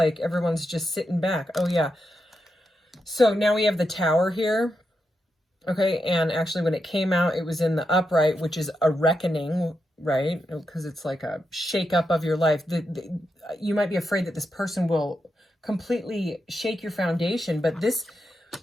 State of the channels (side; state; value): both; normal; correlation 0.85